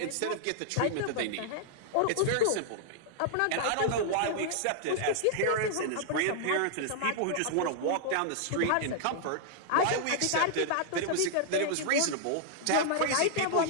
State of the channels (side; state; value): both; different; correlation -0.01